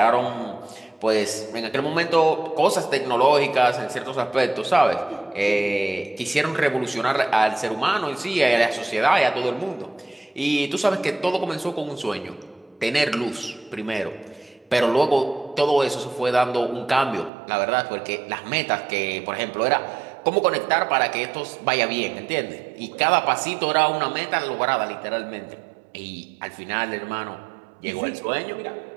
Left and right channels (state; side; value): drops out; left; at 17.3 s